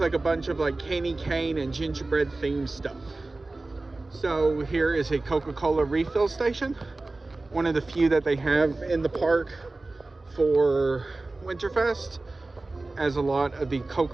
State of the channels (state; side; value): quieter; left; 3.2 dB